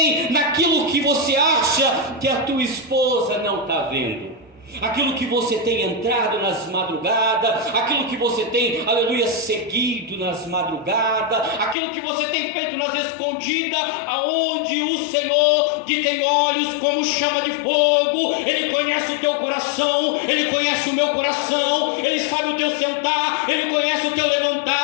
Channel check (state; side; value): drops out; right; at 11.8 s